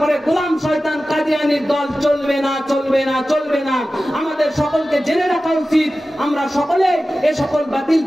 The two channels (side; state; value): both; normal; correlation 0.95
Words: গোলাম শয়তান কাদিয়ানির দল চলবে না, চলবে না, চলবে না। আমাদের সকলকে জেনে রাখা উচিত, আমরা সকলে এই সকল বাতিল